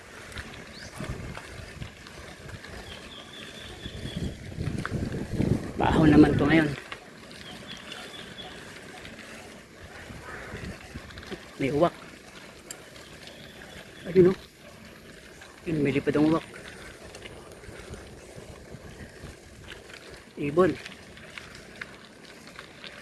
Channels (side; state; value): both; identical; correlation 1.00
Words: Baho naman to ngayon. May uwak. Ayun o. Yun, may lipad ang uwak. Ibon.